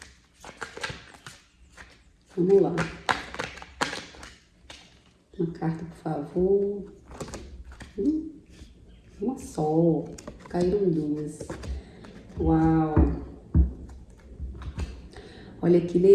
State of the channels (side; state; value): both; identical; correlation 1.00